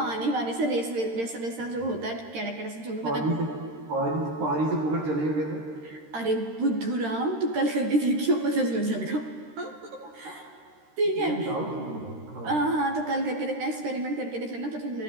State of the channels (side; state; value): left; late; 13 ms